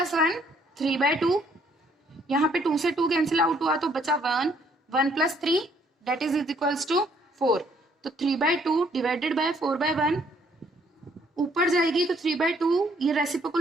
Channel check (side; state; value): both; normal; correlation 0.66